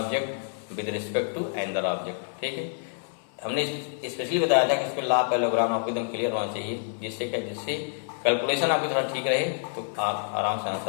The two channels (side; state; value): right; silent; 58 dB below the other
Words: with respect to another object. ठीक है, हमने स्पेशली बताया था कि इसमें ला पैरेललोग्राम आपको एकदम क्लियर होना चाहिए, जिससे क्या, जिससे कैलकुलेशन आपकी थोड़ा ठीक रहे तो आप आराम से